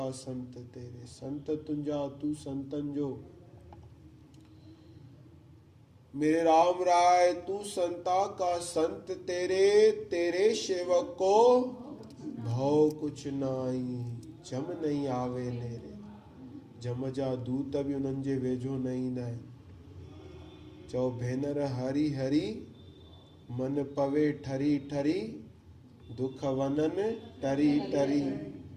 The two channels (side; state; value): both; identical; correlation 1.00